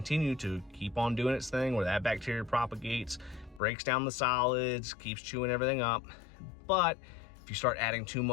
to keep on doing its thing where that bacteria propagates, breaks down the solids, keeps chewing everything up. But if you start adding too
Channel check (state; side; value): drops out; right; at 3.6 s